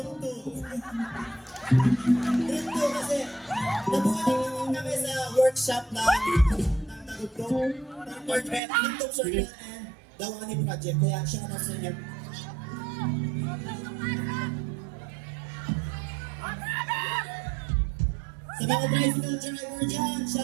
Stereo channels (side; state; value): left; drops out; at 8.6 s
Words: 2. Group 2 kasi nabuhay lang kami sa workshop ng Tagugtog, Tugtog Circle and Dawani Project. Kaya siya na sa inyo. Sa mga tricycle driver dyan,